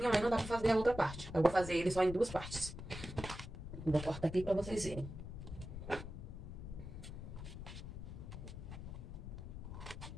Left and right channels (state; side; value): noise; left; rumble, 9 dB below the sound